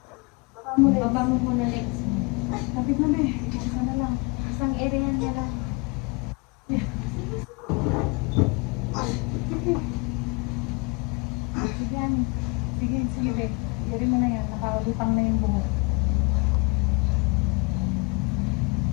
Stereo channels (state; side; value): quieter; right; 30.5 dB